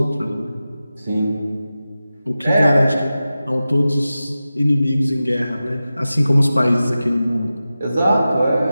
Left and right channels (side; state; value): both; inverted; correlation -0.94